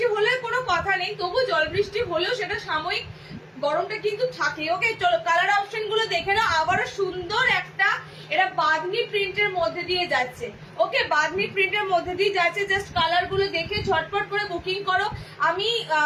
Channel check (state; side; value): identical; both; correlation 1.00